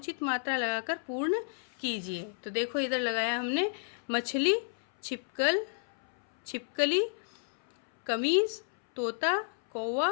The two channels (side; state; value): right; silent; 57 dB below the other